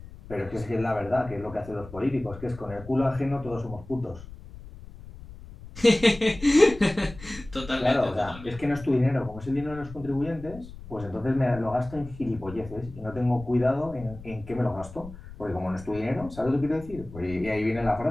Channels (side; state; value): left; noise; rumble, 16 dB below the sound